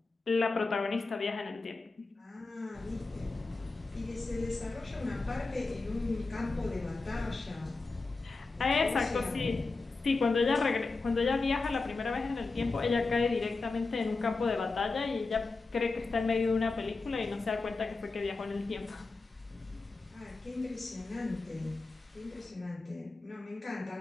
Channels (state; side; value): quieter; right; 3.7 dB